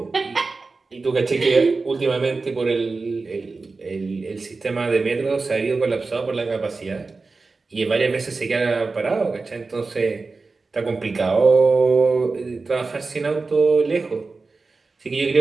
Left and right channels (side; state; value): left; quieter; 3.9 dB